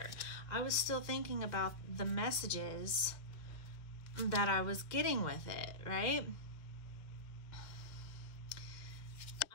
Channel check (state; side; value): late; right; 2.0 ms